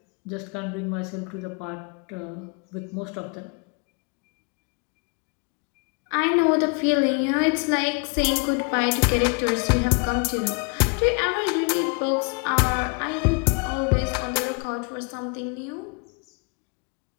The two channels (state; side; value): quieter; right; 34.8 dB